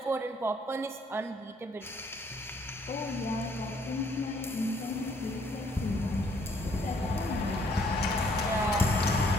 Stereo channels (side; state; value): both; normal; correlation 0.65